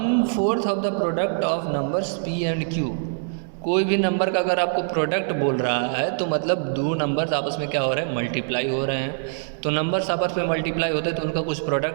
of the product of numbers p and q. कोई भी नंबर का अगर आपको प्रोडक्ट बोल रहा है तो मतलब दो नंबर्स आपस में क्या हो रहे हैं, मल्टीप्लाई हो रहे हैं. तो नंबर्स आपस में मल्टीप्लाई होते हैं तो उनका कुछ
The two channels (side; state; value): left; silent; digital silence